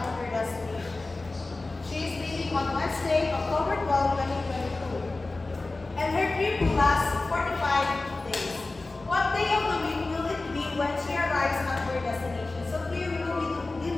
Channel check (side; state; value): right; quieter; 3.3 dB